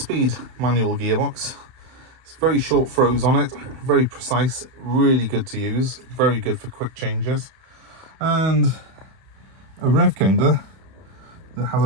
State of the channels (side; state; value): left; late; 31 ms